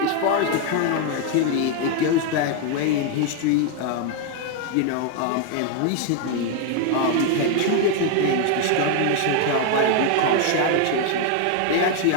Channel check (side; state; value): both; different; correlation 0.01